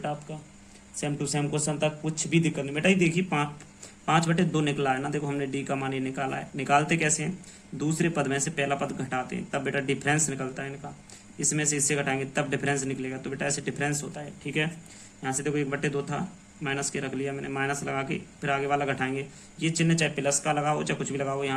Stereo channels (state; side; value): identical; both; correlation 1.00